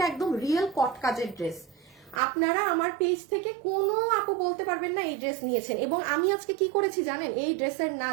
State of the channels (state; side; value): drops out; left; at 2.2 s